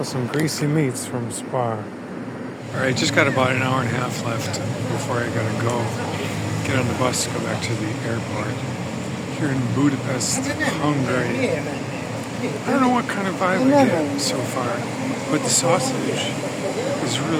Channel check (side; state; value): both; identical; correlation 1.00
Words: some greasy meats from Spa. Alright, just got about an hour and a half left before I gotta go get on the bus to go back to the airport here in Budapest, Hungary. I don't know what kind of vibe I get so far, but the sausage is